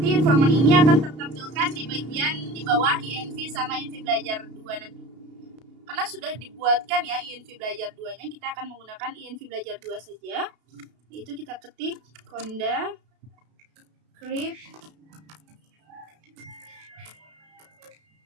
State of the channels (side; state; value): left; late; 32 ms